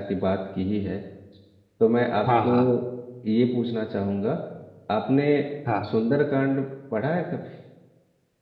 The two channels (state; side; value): identical; both; correlation 1.00